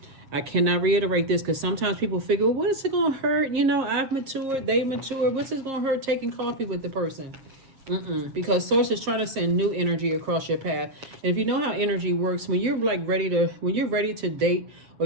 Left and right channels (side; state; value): left; late; 7.6 ms